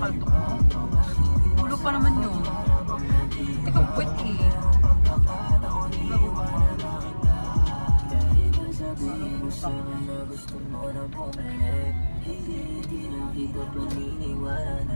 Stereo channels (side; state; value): both; inverted; correlation -1.00